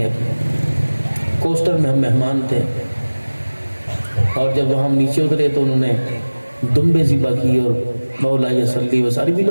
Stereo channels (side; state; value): both; inverted; correlation -1.00